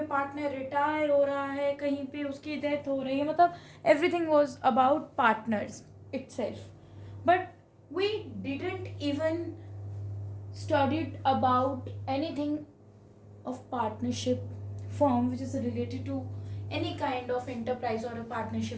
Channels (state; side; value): identical; both; correlation 1.00